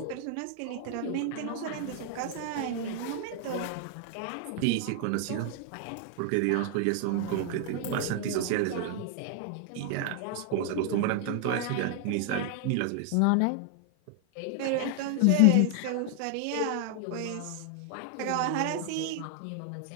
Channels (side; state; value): both; different; correlation 0.00